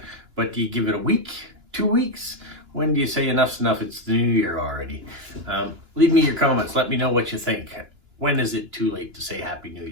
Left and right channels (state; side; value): late; left; 2.9 ms